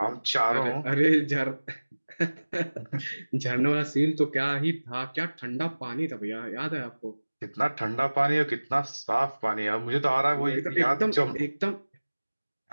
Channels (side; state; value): both; inverted; correlation -1.00